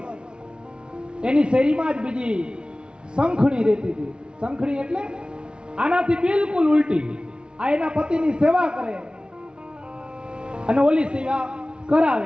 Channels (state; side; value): late; left; 0.055 ms